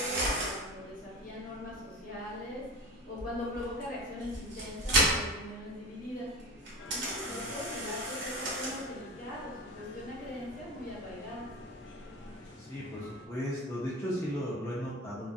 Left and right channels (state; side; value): normal; both; correlation 0.31